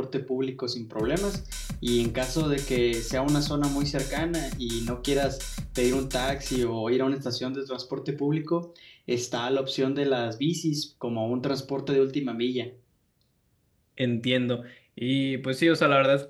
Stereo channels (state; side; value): identical; both; correlation 1.00